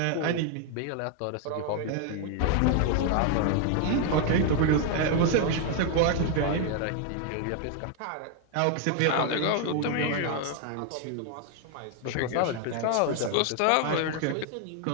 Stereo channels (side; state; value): both; different; correlation 0.01